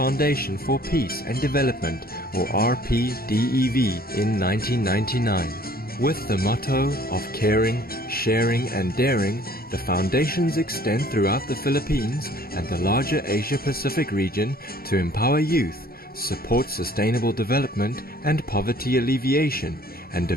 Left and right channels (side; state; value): both; normal; correlation 0.54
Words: for Peace and Development, or RPDEV, in 1999. With the motto of caring, sharing and daring, the foundations extend throughout the Philippines and the larger Asia-Pacific region to empower youth, support sustainable development and poverty alleviation, and